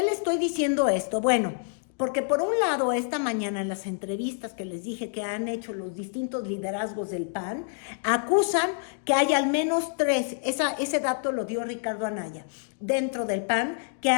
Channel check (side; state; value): right; silent; digital silence